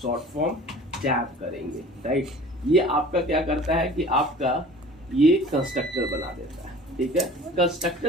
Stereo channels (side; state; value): both; normal; correlation 0.45